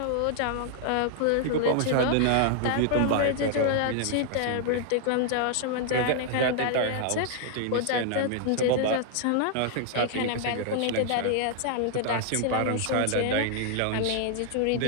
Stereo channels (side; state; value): both; different; correlation -0.01